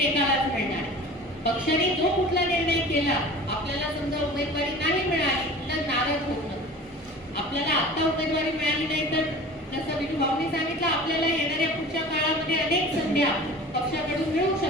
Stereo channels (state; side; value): normal; both; correlation 0.40